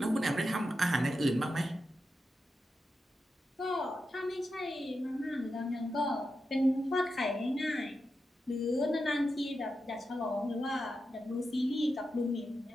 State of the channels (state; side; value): normal; both; correlation 0.89